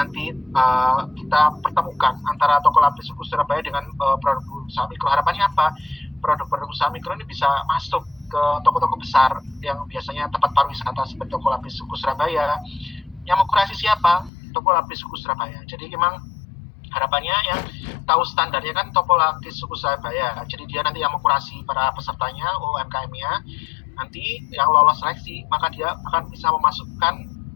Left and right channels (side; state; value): right; drops out; at 14.3 s